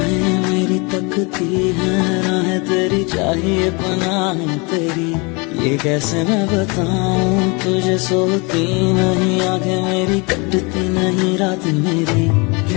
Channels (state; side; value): quieter; right; 29.8 dB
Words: मेरी, तकती है राहें तेरी, चाहिए पनाह तेरी। ये कैसे मैं बताऊं तुझे, सोती नहीं आंखें मेरी, कटती नहीं रात